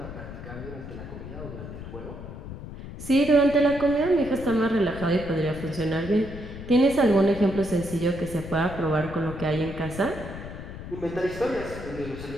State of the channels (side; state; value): left; noise; rumble, 11 dB below the sound